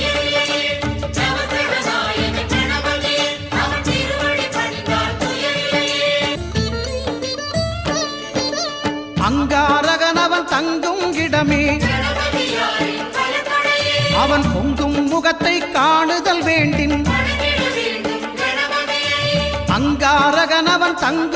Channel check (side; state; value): left; noise; hum, 29 dB below the sound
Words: அங்காரகனவன் தங்கும் இடமே அவன் பொங்கும் முகத்தை காணுதல் வேண்டின். அங்காரகனவன்